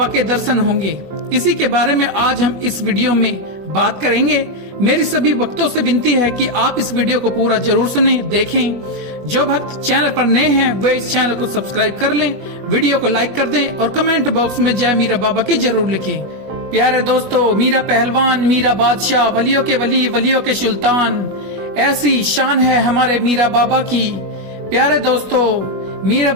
के दर्शन होंगे। इसी के बारे में आज हम इस वीडियो में बात करेंगे। मेरी सभी भक्तों से विनती है कि आप इस वीडियो को पूरा जरूर सुनें, देखें। जो भक्त चैनल पर नए हैं वे इस चैनल को सब्सक्राइब कर लें, वीडियो को लाइक कर दें और कमेंट बॉक्स में जय मीरा बाबा की जरूर लिखें। प्यारे दोस्तों, मीरा पहलवान, मीरा बादशाह, वलियों के वली, वलियों के सुल्तान, ऐसी शान है हमारे मीरा बाबा की। प्यारे दोस्तों, मीरा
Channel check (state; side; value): late; left; 21 ms